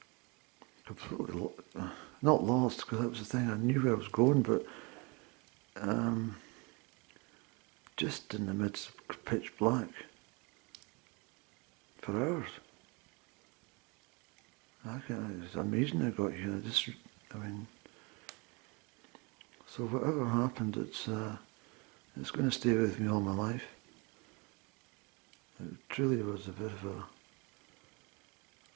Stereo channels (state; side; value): quieter; left; 29.2 dB